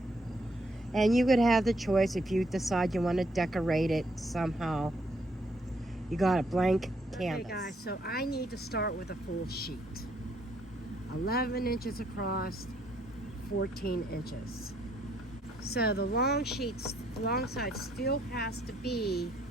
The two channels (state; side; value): normal; both; correlation 0.70